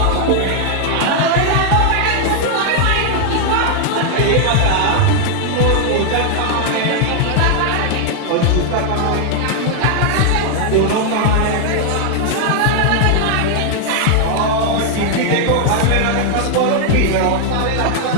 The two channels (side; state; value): both; different; correlation 0.00